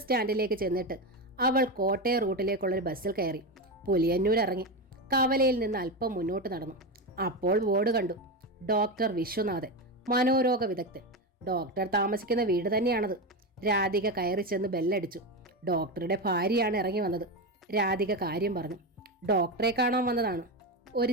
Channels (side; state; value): both; normal; correlation 0.15